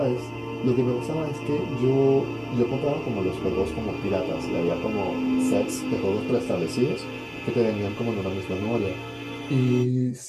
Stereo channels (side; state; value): both; identical; correlation 1.00